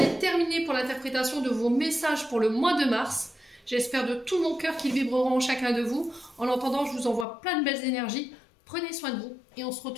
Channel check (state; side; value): drops out; right; at 7.2 s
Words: terminé pour l'interprétation de vos messages pour le mois de mars. J'espère de tout mon cœur qu'ils vibreront en chacun de vous. En attendant, je vous envoie plein de belles énergies. Prenez soin de vous et on se